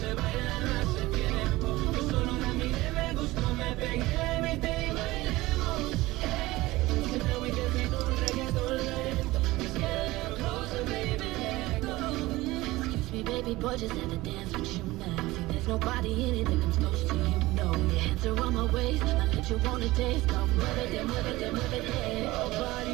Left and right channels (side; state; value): left; quieter; 19.1 dB